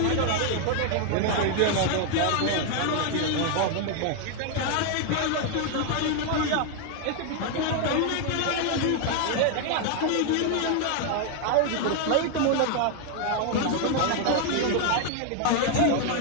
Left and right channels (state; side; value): different; both; correlation 0.01